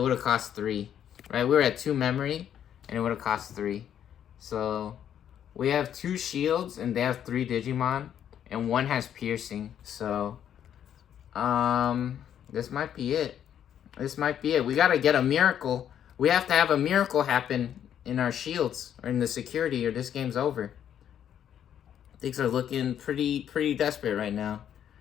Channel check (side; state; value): right; quieter; 9.7 dB